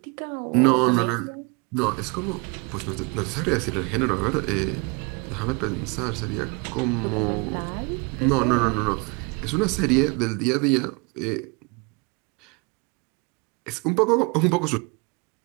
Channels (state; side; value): quieter; left; 29.4 dB